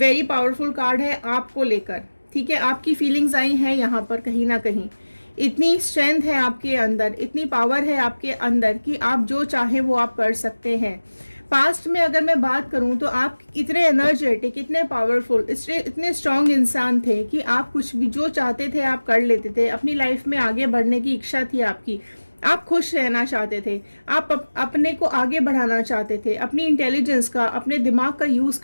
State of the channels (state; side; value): inverted; both; correlation -1.00